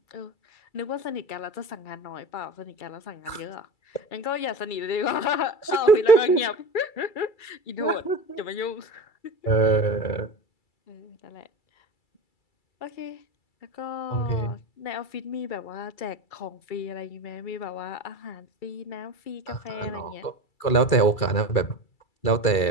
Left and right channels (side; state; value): right; late; 2.3 ms